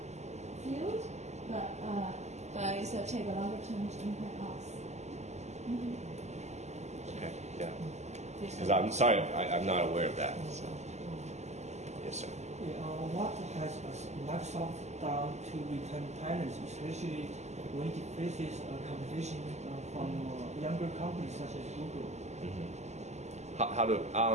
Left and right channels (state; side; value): late; left; 0.33 ms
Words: field, but it's take a longer term to impact us. Okay, yeah. Because I'm sorry, I'm not aware of that. So. Yes, sir. What has Microsoft done to retain talents, especially when it faces competition from younger companies such as Google? How to